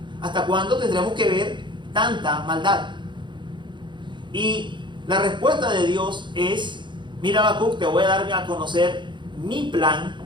¿Hasta cuándo tendremos que ver tanta maldad? Y la respuesta de Dios es: mira, Habacuc, te voy a dar a conocer mi plan,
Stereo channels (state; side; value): late; left; 0.23 ms